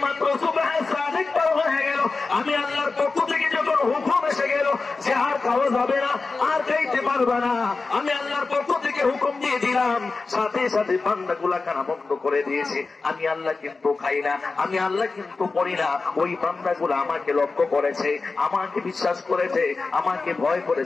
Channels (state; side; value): quieter; right; 4.0 dB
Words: মাত্র সুবহে সাদিক পার হয়ে গেল, আমি আল্লাহর পক্ষ থেকে যখন হুকুম এসে গেল যে আর খাওয়া যাবে না, আর খাইতে পারবে না, আমি আল্লাহর পক্ষ থেকে হুকুম দিয়ে দিলাম, সাথে সাথে বান্দাগুলা কানা বন্ধ করে দিয়েছে। আমি আল্লাহ কিন্তু খাই না, আমি আল্লাহ কিন্তু পড়ি না। ওই বান্দাগুলা আমাকে লক্ষ্য করেছে, আমাকে বিশ্বাস করেছে, আমাকে ভয় করে